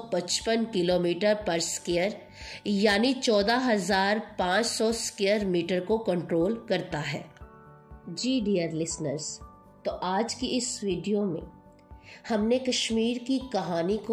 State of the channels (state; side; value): identical; both; correlation 1.00